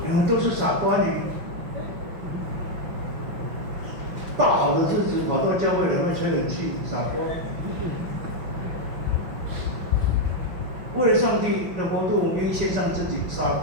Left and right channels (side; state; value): left; late; 5.6 ms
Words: 你们都是傻瓜女。大好的日子跑到教会来会吹冷气，傻瓜。为了上帝的国度，我们愿意献上自己，傻